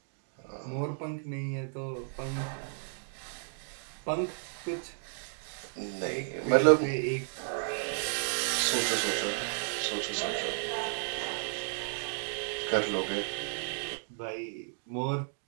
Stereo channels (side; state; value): left; silent; digital silence